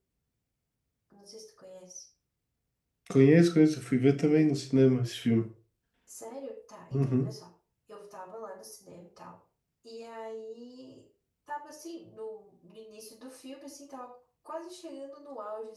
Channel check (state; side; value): identical; both; correlation 1.00